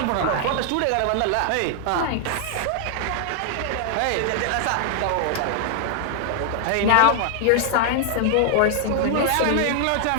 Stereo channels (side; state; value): both; different; correlation 0.00